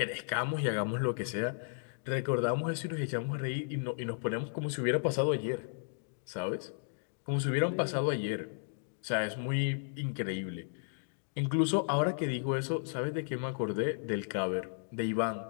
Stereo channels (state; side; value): silent; right; digital silence